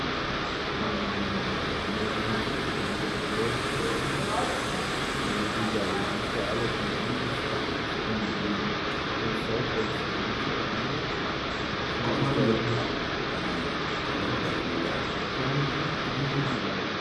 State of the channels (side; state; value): both; identical; correlation 1.00